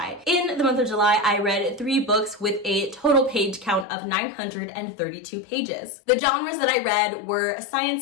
In the month of July, I read 3 books with a total page count of 932 pages. The genres that I read were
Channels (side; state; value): right; drops out; at 3.9 s